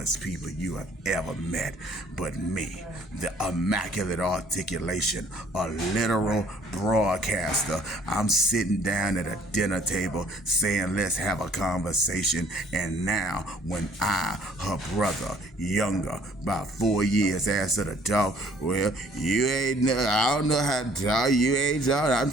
people you have ever met. But me, the immaculate articulation, a literal broadcaster, I'm sitting down at a dinner table saying, let's have a conversation. And now when I, her brother, younger, about 4 years, asked her to talk, well, I don't know how to talk, you ain't talking, I'm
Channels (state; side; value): normal; both; correlation 0.58